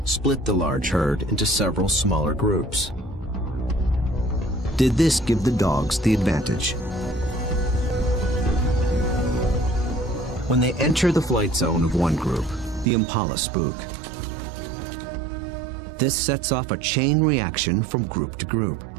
split the large herd into several smaller groups. Did this give the dogs the advantage? When they enter the flight zone of one group, the impala spook. This sets off a chain reaction from group to group.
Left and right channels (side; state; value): left; drops out; at 12.9 s